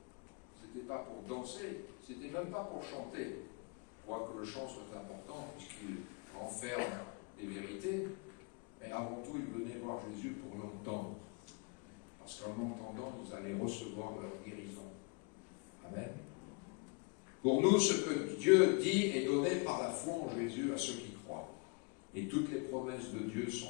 c'était pas pour danser, c'était même pas pour chanter. Quoique le chant soit important, puisqu'il renferme des vérités, mais avant tout, ils venaient voir Jésus pour l'entendre. Parce qu'en l'entendant, vous allez recevoir leur guérison. Amen. Pour nous, ce que Dieu dit est donné par la foi en Jésus à ceux qui croient. Et toutes les promesses de Dieu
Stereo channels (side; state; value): right; quieter; 31.5 dB